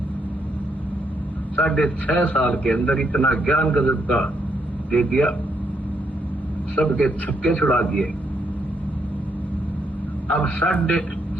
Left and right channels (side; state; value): both; normal; correlation 0.76